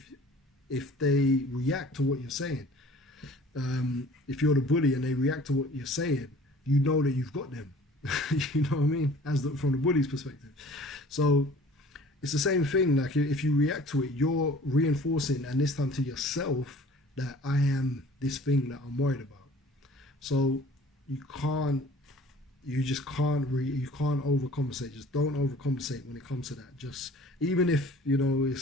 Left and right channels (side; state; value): both; normal; correlation 0.49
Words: they react to what you're saying. If you're the bully and they react to what you're saying, you know that you've got them. You know what I mean? From the bully's perspective. So it's the same thing. Like if you react to it, you're reinforcing, and this time to yourself, that I am this thing that I'm worried about. So you can't overcompensate. Just don't overcompensate when it comes to that. Just, even if,